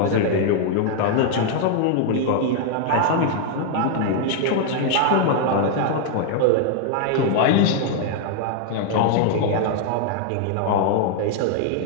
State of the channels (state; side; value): different; both; correlation 0.00